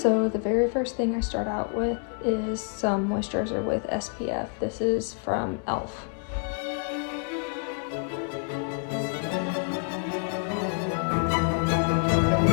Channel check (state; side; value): quieter; right; 39.3 dB